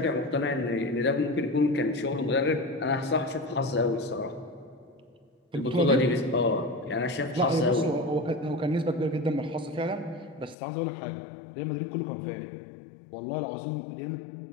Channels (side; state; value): right; drops out; at 10.6 s